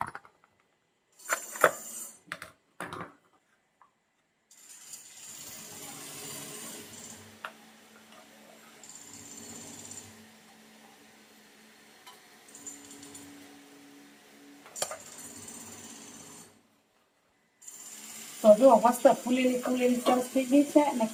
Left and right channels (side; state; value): both; identical; correlation 1.00